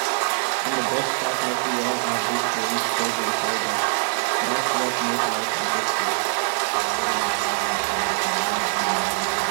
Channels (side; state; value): left; silent; digital silence